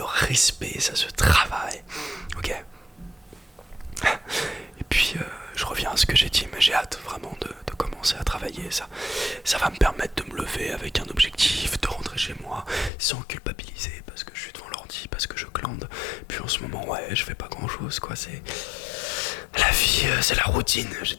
respect, ça se travaille, ok. Et puis je reviens à ce que j'ai dit, mais j'ai hâte vraiment de commencer à travailler. Ça va me permettre de me lever avec un objectif, de rentrer chez moi sans culpabiliser parce que je suis devant l'ordi, parce que je glande. Puis en ce moment, ouais, je fais pas grand chose, quoi. C'est la vie, c'est la routine. J'ai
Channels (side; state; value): right; drops out; at 12.9 s